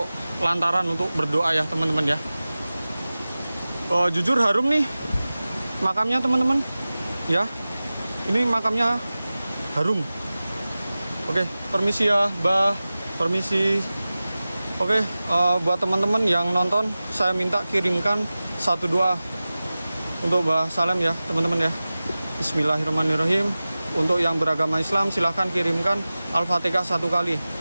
lantaran untuk berdoa ya teman-teman ya. Jujur harum nih makamnya teman-teman ya. Ini makamnya harum. Oke, permisi ya Mbah. Permisi. Oke, buat teman-teman yang nonton, saya minta kirimkan satu doa untuk Mbah Salem ya teman-teman ya. Bismillahirrahmanirrahim. Untuk yang beragama Islam silahkan kirimkan Al-Fatihah 1 kali.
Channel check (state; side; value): inverted; both; correlation -0.97